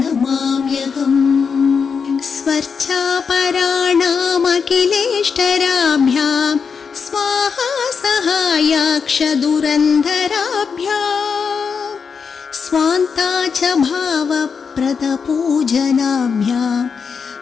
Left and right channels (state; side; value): quieter; right; 5.9 dB